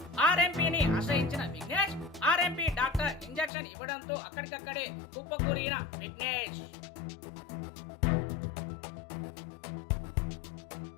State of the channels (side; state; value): right; drops out; at 3.5 s